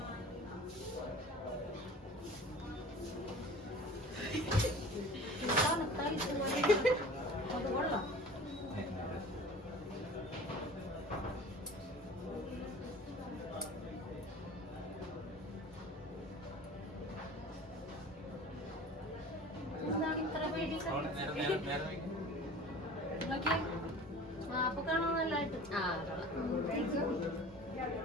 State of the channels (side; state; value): both; normal; correlation 0.41